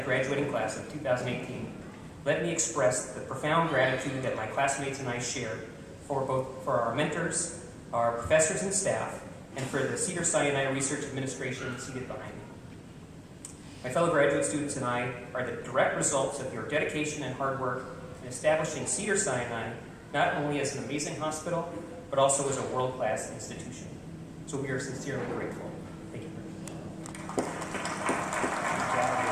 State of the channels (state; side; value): identical; both; correlation 1.00